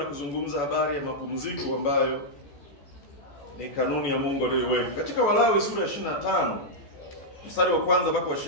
kuzungumza habari ya mapumziko ambayo ni kanuni ya Mungu aliyoiweka. Katika Walawi sura ya 25 mstari wa kwanza mpaka wa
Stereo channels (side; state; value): right; late; 14 ms